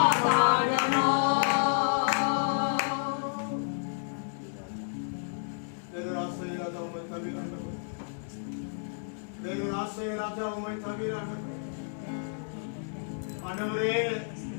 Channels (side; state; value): right; silent; digital silence